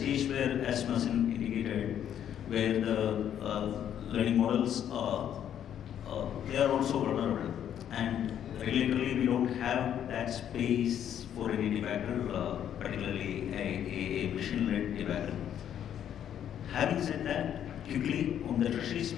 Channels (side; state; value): right; quieter; 9.9 dB